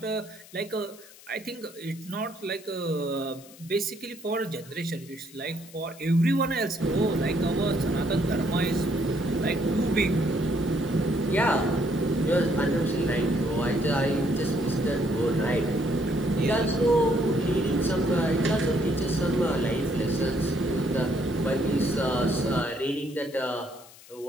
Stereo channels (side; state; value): left; noise; hiss, 21 dB below the sound